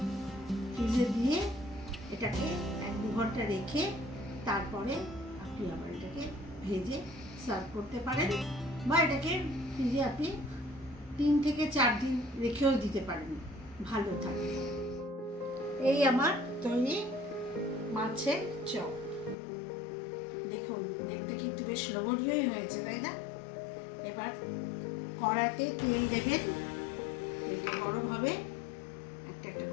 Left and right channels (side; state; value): right; drops out; at 19.4 s